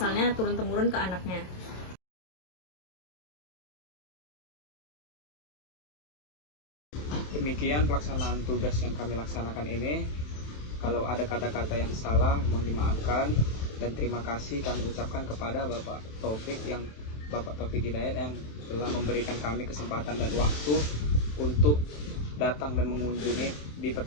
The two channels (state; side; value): late; right; 27 ms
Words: turun temurun ke anaknya. Demikian pelaksanaan tugas yang kami laksanakan ini. Kalau ada kata-kata yang salah, mohon dimaafkan, dan terima kasih kami ucapkan kepada Bapak Taufik Hidayat yang telah memberikan kami kesempatan dan waktu untuk datang dan mengunjungi di